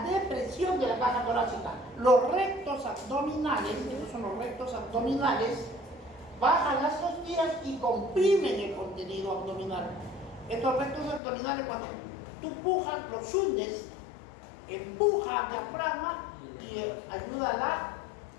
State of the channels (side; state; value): right; drops out; at 11.2 s